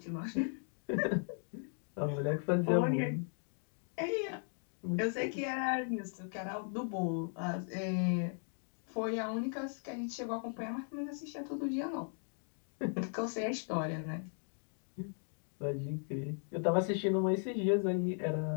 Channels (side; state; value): right; silent; 53 dB below the other